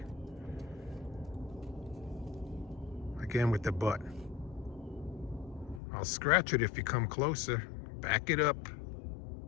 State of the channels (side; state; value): right; drops out; at 5.8 s